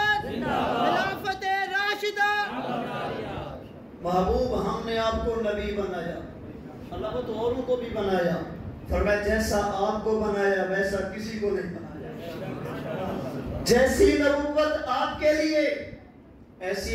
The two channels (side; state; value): both; identical; correlation 1.00